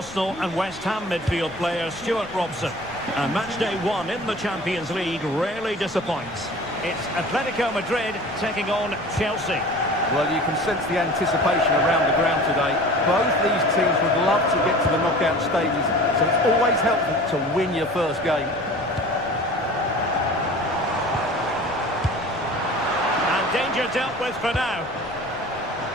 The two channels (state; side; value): noise; left; rumble, 23 dB below the sound